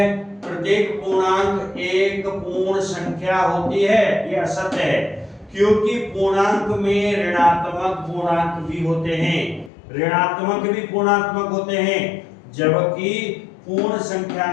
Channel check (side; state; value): right; drops out; at 9.7 s